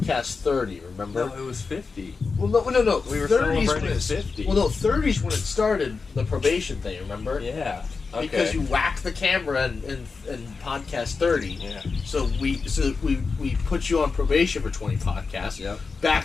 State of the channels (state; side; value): quieter; right; 4.6 dB